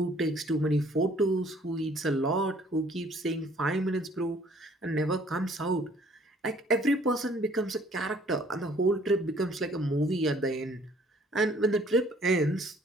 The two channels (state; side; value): normal; both; correlation 0.58